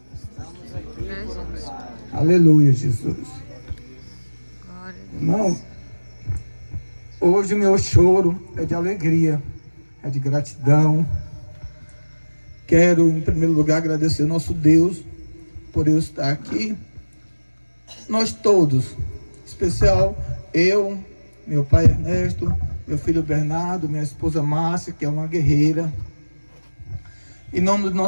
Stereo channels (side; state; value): both; inverted; correlation -1.00